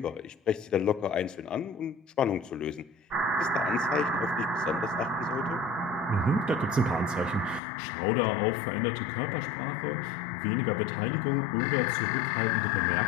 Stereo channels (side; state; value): right; drops out; at 7.6 s